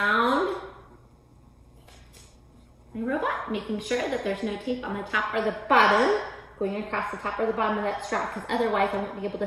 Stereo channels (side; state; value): both; identical; correlation 1.00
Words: my robot, making sure that there's no tape on the top or the bottom, going across the top or the bottom of that straw, because otherwise I won't be able